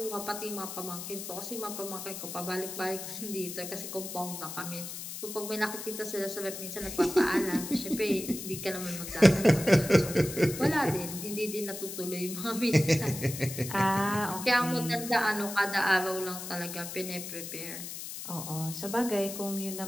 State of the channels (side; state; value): left; noise; hiss, 8 dB below the sound